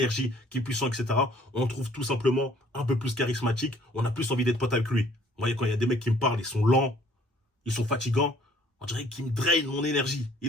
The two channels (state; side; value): normal; both; correlation 0.58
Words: qui est puissant, etc., on trouve tout simplement un peu plus charismatique. On a plus envie d'être pote avec lui. Vous voyez, quand il y a des mecs qui me parlent, ils sont lents, ils sont fatigants, on dirait qu'ils me drainent mon énergie.